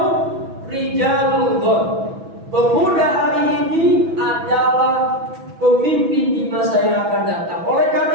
rijalul ghad, pemuda hari ini adalah pemimpin di masa yang akan datang. Oleh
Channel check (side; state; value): left; late; 6.1 ms